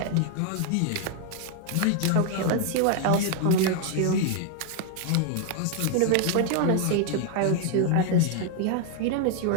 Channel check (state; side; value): different; both; correlation 0.00